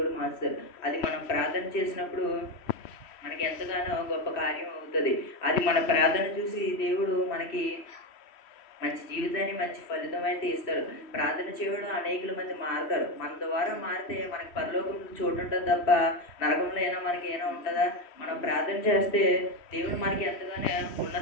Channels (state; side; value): late; right; 3.1 ms